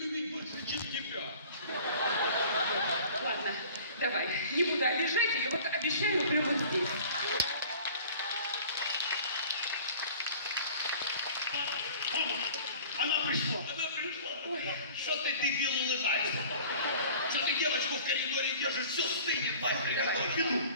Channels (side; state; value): both; inverted; correlation -0.46